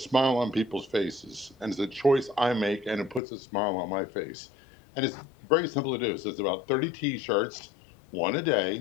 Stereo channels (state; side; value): drops out; right; at 3.2 s